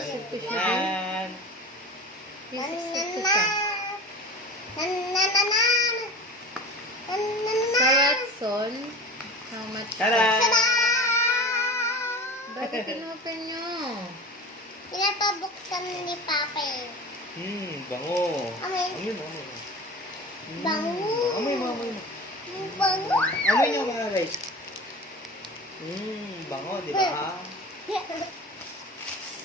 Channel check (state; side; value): normal; both; correlation 0.34